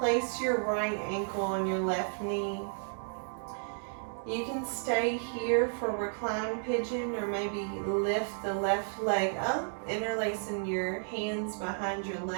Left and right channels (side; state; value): left; silent; digital silence